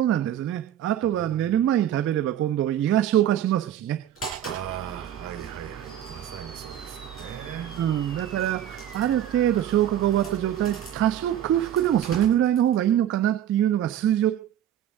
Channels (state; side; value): quieter; left; 11.0 dB